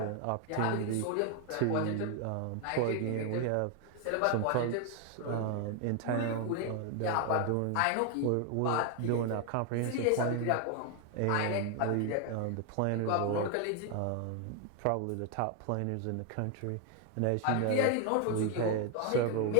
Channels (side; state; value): both; different; correlation 0.01